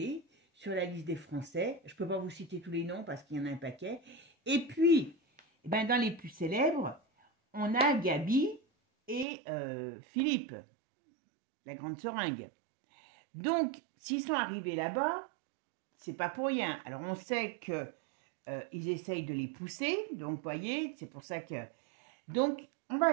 sur la liste des Français. Je ne peux pas vous citer tous les noms parce qu'il y en a un paquet. Et puis, dans les plus célèbres, on a Gabi et Philippe, la grande seringue. Donc, s'ils sont arrivés là-bas, c'est pas pour rien. Alors, on sait que ils essayent de les pousser, donc, vous voyez, c'est pour ça que... Donc, on va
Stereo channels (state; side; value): drops out; left; at 9.2 s